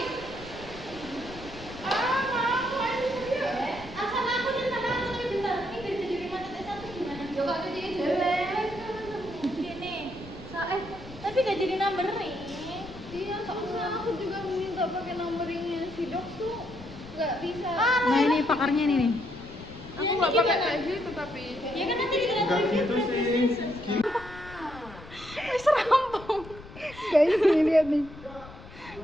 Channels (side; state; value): left; noise; rumble, 17 dB below the sound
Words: Tapi gak jadi numbering. Iya, soalnya aku juga minta pakai numberingnya si dok tuh nggak bisa. Nah, ini pakarnya ini nih. Aku nggak pakai kayak gitu tapi. Ya kan nanti kita enggak gitu sih. Wis rampung. Guys, ini lihat nih.